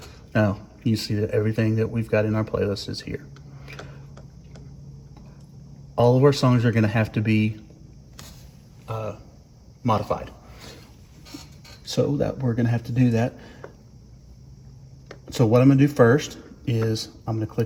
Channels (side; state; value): both; identical; correlation 1.00